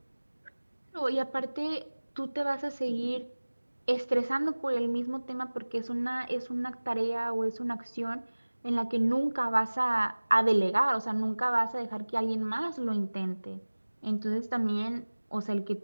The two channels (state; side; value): inverted; both; correlation -1.00